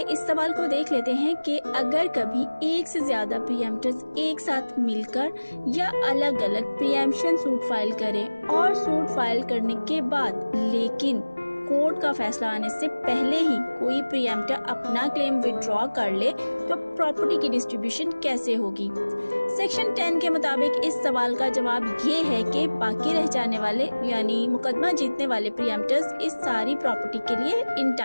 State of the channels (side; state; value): both; inverted; correlation -1.00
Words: इस सवाल को देख लेते हैं कि अगर कभी एक से ज्यादा प्रीएम्प्टर्स एक साथ मिलकर या अलग अलग प्रीएम्प्शन सूट फाइल करें और सूट फाइल करने के बाद लेकिन कोर्ट का फैसला आने से पहले ही कोई प्रीएम्प्टर अपना क्लेम विड्रॉ कर ले, तो प्रॉपर्टी की डिस्ट्रीब्यूशन कैसे होगी? सेक्शन 10 के मुताबिक इस सवाल का जवाब ये है कि बाकी रह जाने वाले यानी मुकदमा जीतने वाले प्रीएम्प्टर्स इस सारी प्रॉपर्टी के लिए